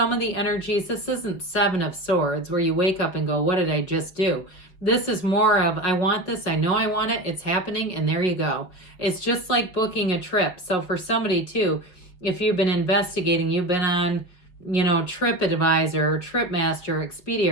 of the energies. This isn't Seven of Swords where you wake up and go, what did I just do? This is more of, I want this, I know I want it, it's happening, and there you go. It's just like booking a trip. So for somebody too, if you've been investigating, you've been on, TripAdvisor, or TripMaster, Expedia,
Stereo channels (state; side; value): late; right; 5.7 ms